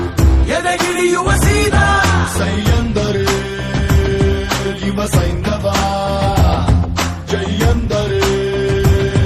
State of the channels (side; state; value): both; identical; correlation 1.00